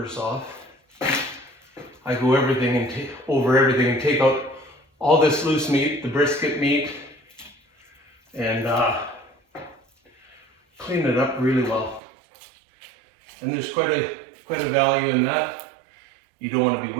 off, I go over everything and take out all this loose meat, the brisket meat, and clean it up really well. And there's quite a value in that. You don't want to be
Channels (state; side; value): drops out; left; at 12.0 s